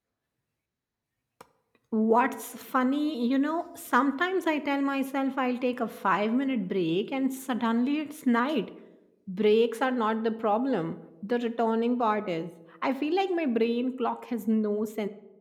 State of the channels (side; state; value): both; identical; correlation 1.00